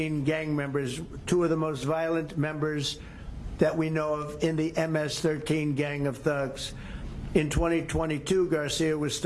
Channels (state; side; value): identical; both; correlation 1.00